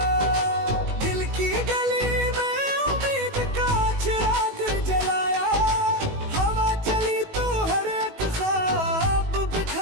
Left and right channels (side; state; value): left; late; 18 ms